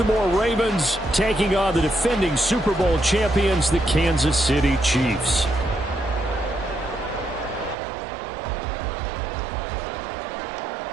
Ravens taking on the defending Super Bowl champions, the Kansas City Chiefs.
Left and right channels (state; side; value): drops out; left; at 7.8 s